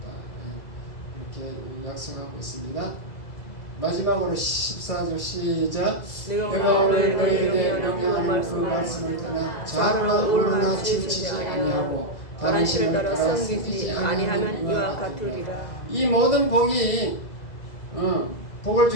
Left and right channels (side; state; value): right; late; 2.0 ms